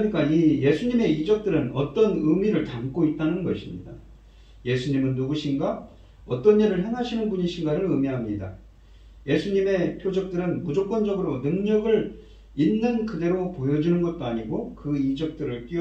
이 예수님의 이적들은 어떤 의미를 담고 있다는 것입니다. 예수님은 누구신가? 어떤 일을 행하시는 분이신가를 의미합니다. 예수님의 표적들은 무조건적으로 능력을 있는 그대로 보여주는 것도 아니고 그 이적들을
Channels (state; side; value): identical; both; correlation 1.00